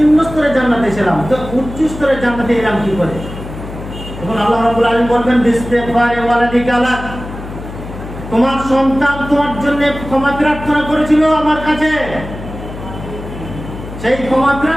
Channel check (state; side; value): noise; left; hum, 11 dB below the sound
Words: স্তরে জান্নাতে ছিলাম, তো উচ্চ স্তরে জান্নাতে এলাম কি করে? তখন আল্লাহ রাব্বুল আলামিন বলবেন, বিস্তিগফারি ওয়ালাদিকা লাক, তোমার সন্তান তোমার জন্য ক্ষমা প্রার্থনা করেছিল আমার কাছে, সেই ক্ষমা